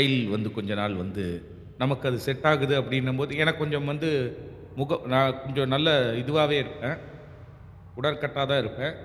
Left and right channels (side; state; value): both; identical; correlation 1.00